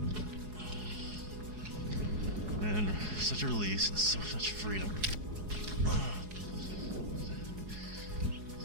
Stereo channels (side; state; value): left; late; 4.8 ms